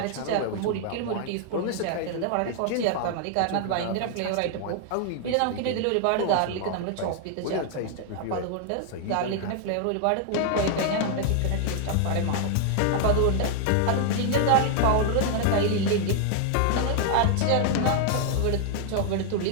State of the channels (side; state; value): both; different; correlation 0.00